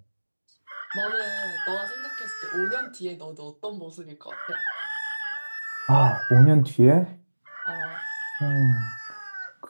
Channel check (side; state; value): both; inverted; correlation -1.00